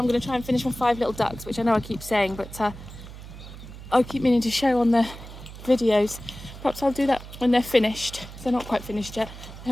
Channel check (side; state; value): right; noise; hum, 14 dB below the sound